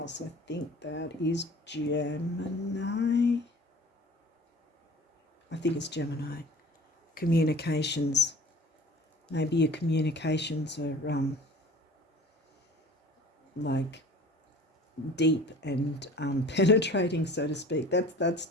I think that is Gemini. I think it's Gemini. Communications. Maybe your communications are like deep and penetrating, so to speak. That's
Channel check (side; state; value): both; normal; correlation 0.44